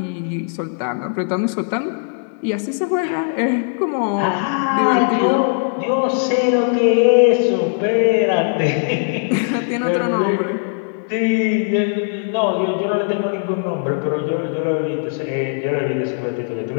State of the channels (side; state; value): right; silent; 66 dB below the other